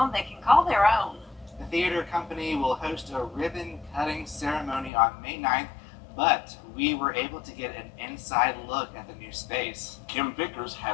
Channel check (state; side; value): drops out; right; at 4.9 s